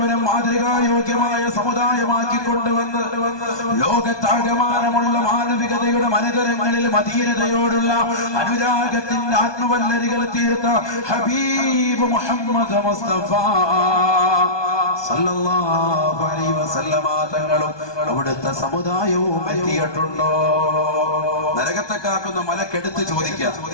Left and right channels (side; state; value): right; late; 1.2 ms